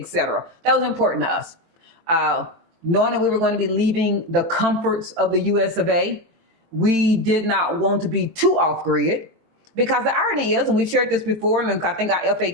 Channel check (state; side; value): late; left; 24 ms